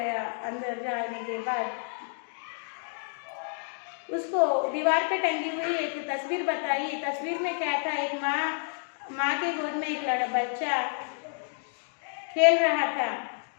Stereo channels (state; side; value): silent; right; 58 dB below the other